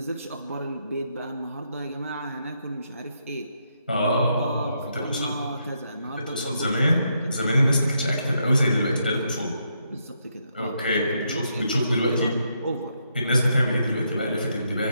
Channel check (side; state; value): both; inverted; correlation -0.78